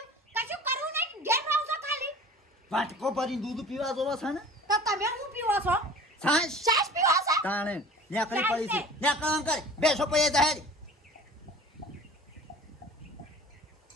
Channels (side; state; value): both; normal; correlation 0.43